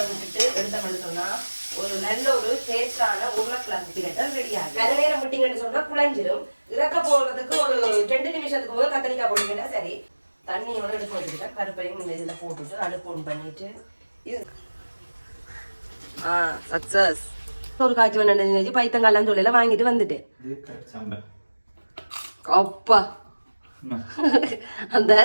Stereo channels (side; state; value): both; inverted; correlation -1.00